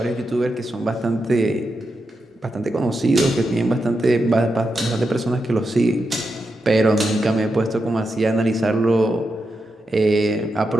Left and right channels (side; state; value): both; normal; correlation 0.87